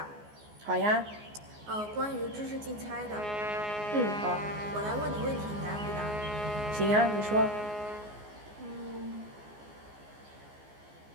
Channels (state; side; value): late; left; 14 ms